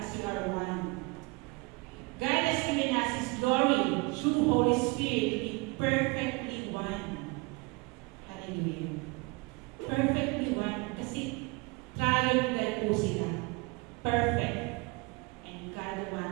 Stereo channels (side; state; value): left; quieter; 27.5 dB